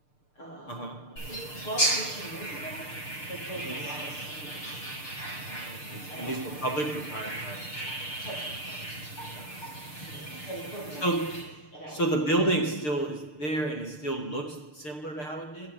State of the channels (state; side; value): late; right; 6.7 ms